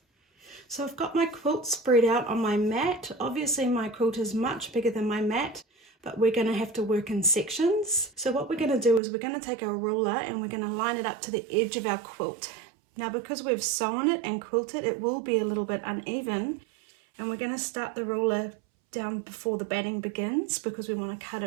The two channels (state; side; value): drops out; left; at 9.0 s